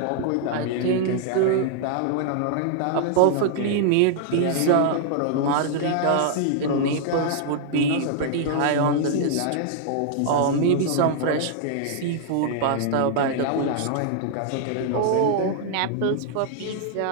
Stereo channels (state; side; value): different; both; correlation -0.01